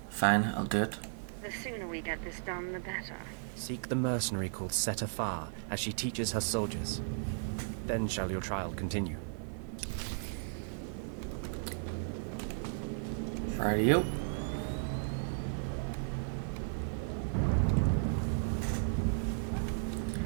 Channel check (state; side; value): silent; left; 54 dB below the other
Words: Fine, I'll do it. The sooner we get this done, the better. Seek the mercenary called Setafar as she teaches her soldiers. Then shall your trial continue. Rightio.